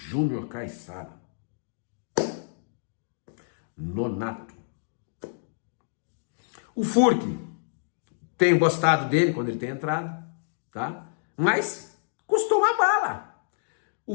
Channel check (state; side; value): silent; right; digital silence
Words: Caissara, Nonato. O Furque, tenho gostado dele quando ele tem entrado, tá? Mas custou uma bala. O